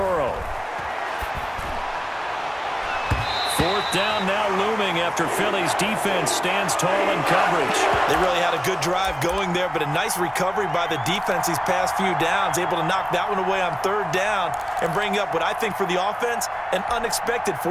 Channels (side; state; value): both; identical; correlation 1.00